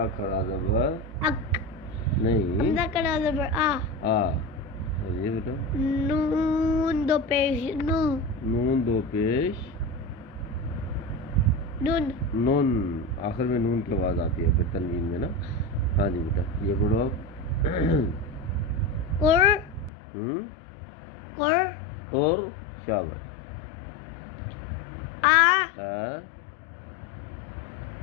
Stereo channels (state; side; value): drops out; right; at 19.9 s